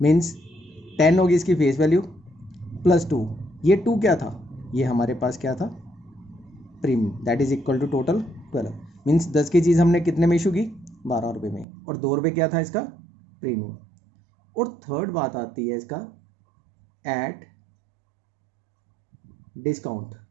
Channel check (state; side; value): drops out; left; at 11.7 s